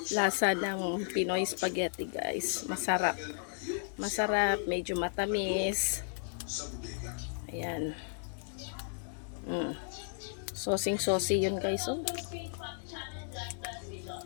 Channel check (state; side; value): silent; right; digital silence